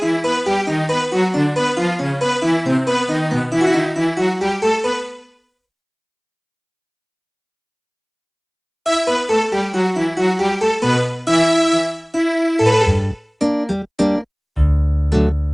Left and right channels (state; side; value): identical; both; correlation 1.00